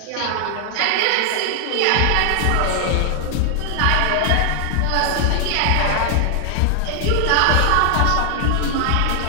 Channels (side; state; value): both; different; correlation 0.00